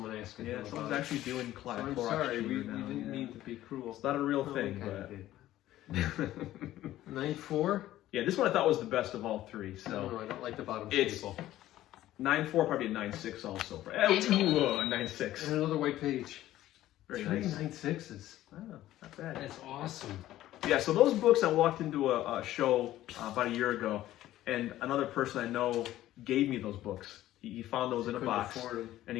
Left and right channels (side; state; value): right; quieter; 14.2 dB